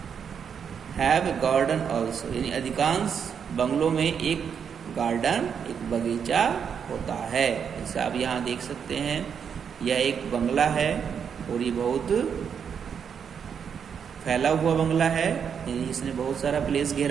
हैव ए गार्डन ऑल्सो यानी अधिकांश बंगलों में एक गार्डन, एक बगीचा होता है। जैसे आप यहाँ देख सकते हैं, यह एक बंगला है और ये बहुत फैला हुआ बंगला है, यानी इसने बहुत सारा प्लेस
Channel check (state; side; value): quieter; left; 7.3 dB